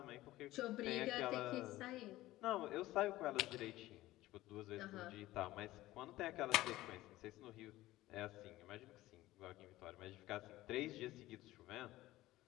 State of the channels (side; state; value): right; quieter; 16.7 dB